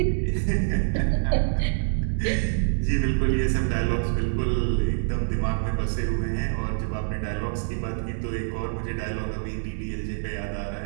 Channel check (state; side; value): silent; left; digital silence